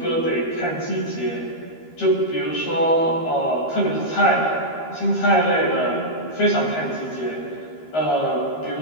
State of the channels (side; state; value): right; late; 13 ms